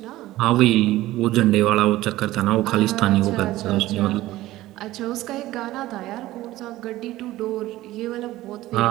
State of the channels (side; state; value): left; quieter; 16.4 dB